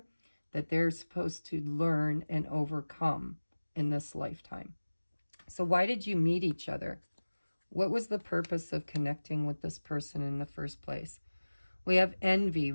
that they're supposed to learn and overcome in this lifetime. So why did you meet each other? What was the purpose of connecting with this person in the first place? We have envy.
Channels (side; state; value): both; inverted; correlation -1.00